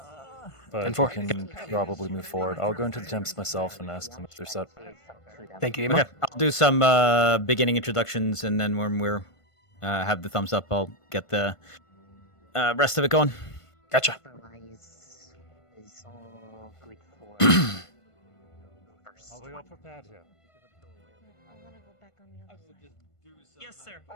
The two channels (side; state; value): right; late; 1.5 ms